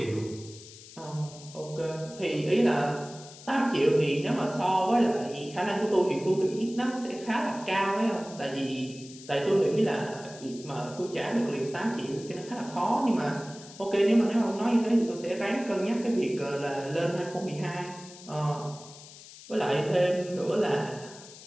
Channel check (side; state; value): left; noise; hiss, 18 dB below the sound